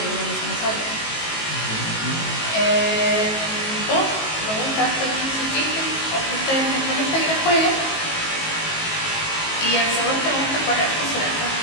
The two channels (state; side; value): late; right; 19 ms